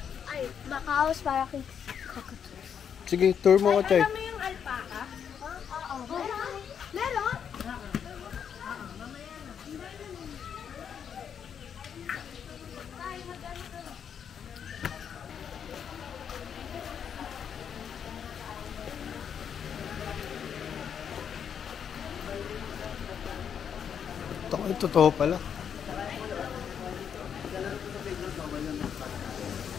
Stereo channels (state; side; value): quieter; right; 7.9 dB